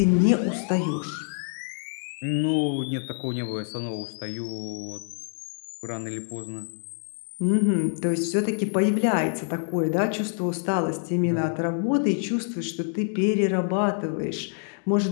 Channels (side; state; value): right; silent; digital silence